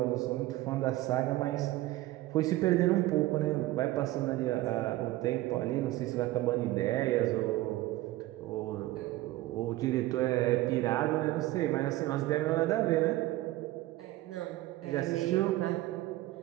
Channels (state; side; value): quieter; left; 17.1 dB